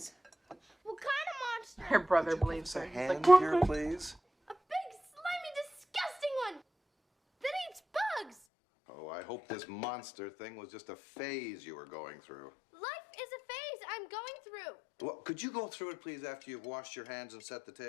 What kind of monster? Her brother Would you believes give her. us a He's hand like, here, "What?" please? A big, slimy, disgusting one that eats bugs. Oh, I hope this monster thing was just a phase you were going through. Life is a phase I'm going through. Well, could you go through it, please, after you've washed your hands and set the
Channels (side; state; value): right; drops out; at 8.3 s